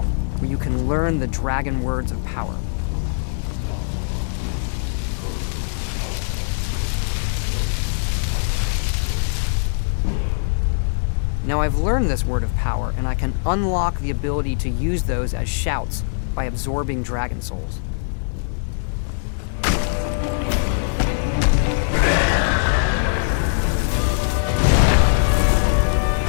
where you can learn the dragon words of power. Now I've learned this word of power, and I can unlock the ability to use those as shouts by absorbing dragon souls.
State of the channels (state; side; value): silent; right; digital silence